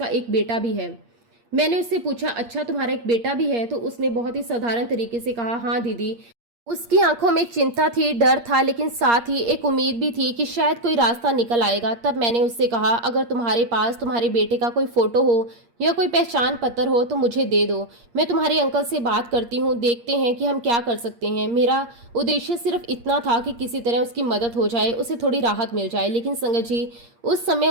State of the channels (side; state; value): left; late; 8.6 ms